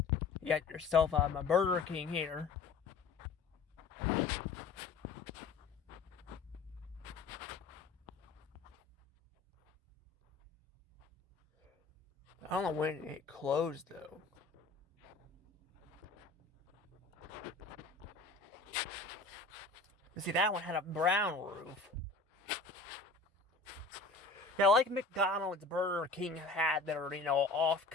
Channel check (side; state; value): right; quieter; 3.9 dB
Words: You got yourself a Burger King here. I don't know when it closed though. See, that one had a brown roof. Yeah, like McDonald's, Burger King had their,